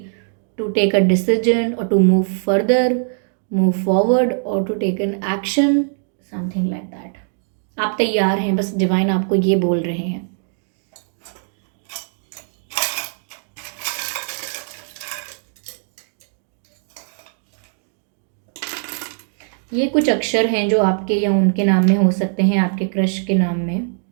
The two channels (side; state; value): left; silent; digital silence